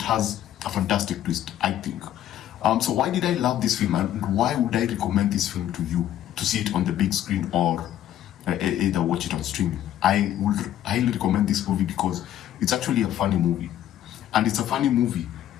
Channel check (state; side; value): quieter; right; 11.8 dB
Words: has a fantastic twist, I think. So why did I love this film, and why would I recommend this film to you to see it on the big screen or either watch it on streaming? I would highly recommend this movie because it's actually a funny movie. And it's a funny movie,